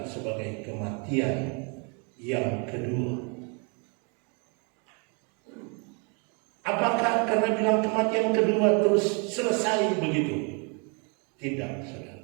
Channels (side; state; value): left; quieter; 35.3 dB